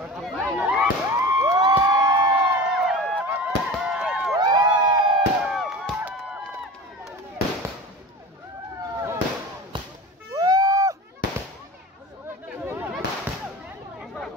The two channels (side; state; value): both; normal; correlation 0.34